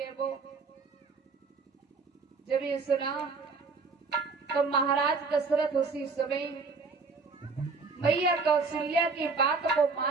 वो। जब ये सुना तो महाराज दशरथ उसी समय मैया कौशल्या की बात को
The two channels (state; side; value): quieter; left; 4.4 dB